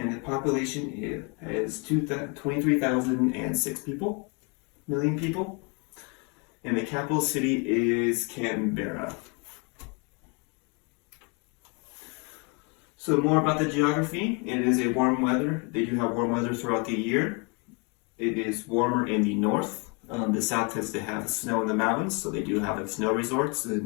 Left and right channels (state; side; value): quieter; right; 32.2 dB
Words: the population is 23,006 million people, and the capital city is Canberra. So more about the geography. It is a warm weather. They do have warm weather throughout the year. It is warmer in the north. The south tends to have snow in the mountains, so they do have like snow resorts